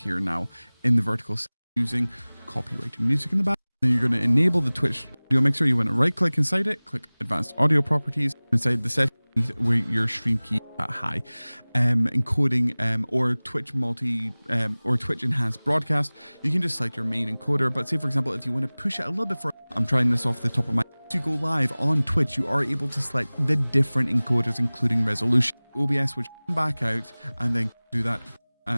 now in the vertical using copyrighted music in the back. Then you're going to enable the Twitch audio mixer. You want to right click inside it, click advanced audio properties inside the setting where your stream key at high, encoding or Twitch or Twitch enhanced broadcast. You can just select your main encoder, but say for example if you want to push it a little bit further, I'm trying this off the top of my head. To go live on Twitch, you are able to select the different encoders including resolution. OBS would back out and then do that,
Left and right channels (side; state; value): both; inverted; correlation -1.00